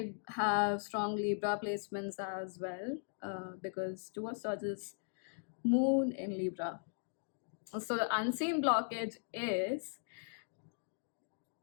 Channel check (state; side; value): silent; right; digital silence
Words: have strong Libra placements as well, because Two of Swords is Moon in Libra. So the unseen blockage is,